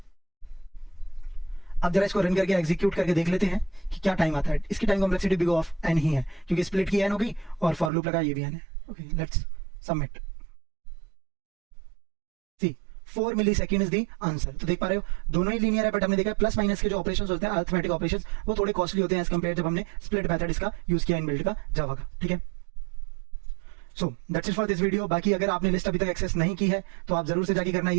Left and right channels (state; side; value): drops out; left; at 7.9 s